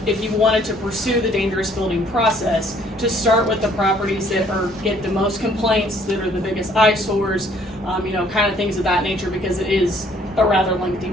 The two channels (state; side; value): normal; both; correlation 0.61